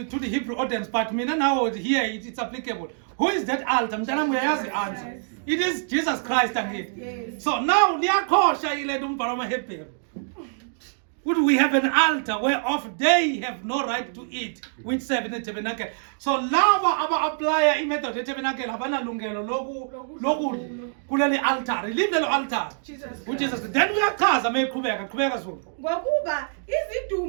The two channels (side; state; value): left; silent; digital silence